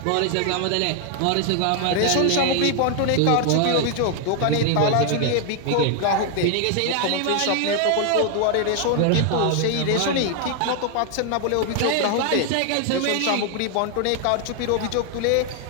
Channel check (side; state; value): both; different; correlation 0.00